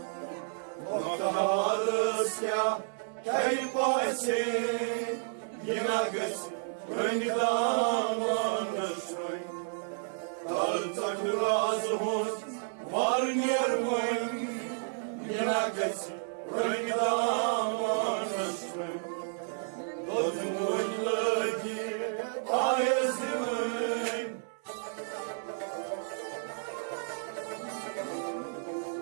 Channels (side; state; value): left; silent; 57 dB below the other